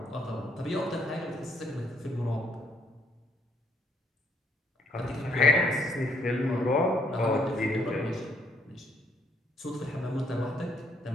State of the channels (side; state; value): both; normal; correlation 0.68